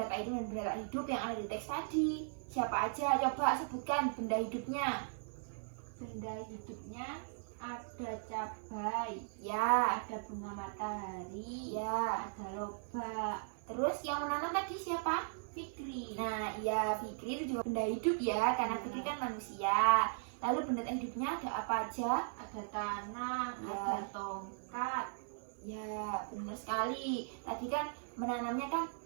tak hidup dan benda tak hidup yang ada di teks tadi? Siapa aja? Coba sebutkan benda hidupnya. Benda hidupnya ada cabai, Ya, ada bunga matahari, ya. ada lobak. Terus yang menanam tadi siapa? Fikri. Nah, ya Fikri itu juga benda hidup ya, karena Fikri kan manusia. Lalu benda tak hidupnya ada apa aja? Ada tanah, Ya. ada tongkat. Ya, benar sekali. Tadi kan menanamnya kan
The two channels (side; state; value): left; silent; 52 dB below the other